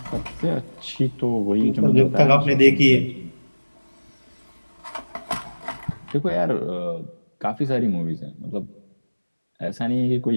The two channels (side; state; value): both; inverted; correlation -1.00